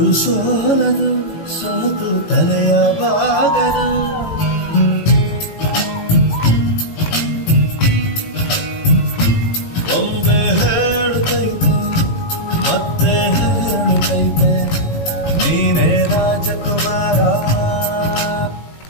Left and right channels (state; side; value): late; right; 18 ms